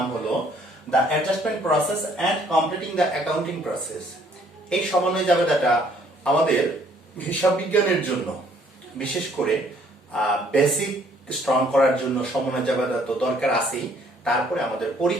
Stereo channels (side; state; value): both; normal; correlation 0.62